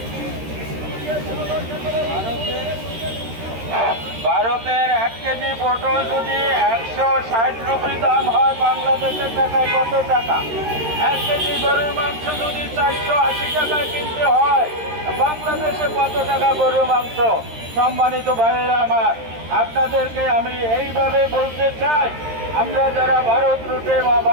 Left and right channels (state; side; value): late; left; 13 ms